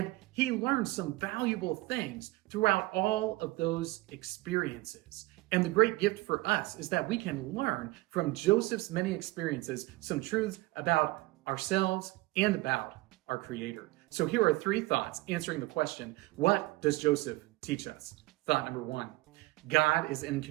he learns some valuable things throughout all of those experiences. And the great gift for us is that we can learn from Joseph's many experiences some truths about ourselves and about our Creator. So here are 3 thoughts answering the question, what does Joseph teach us? Thought number 1, God is in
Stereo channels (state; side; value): quieter; left; 20.4 dB